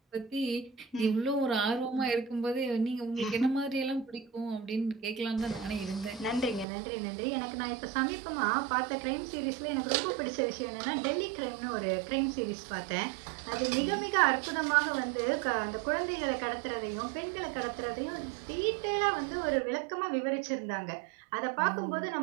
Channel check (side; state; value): left; drops out; at 6.7 s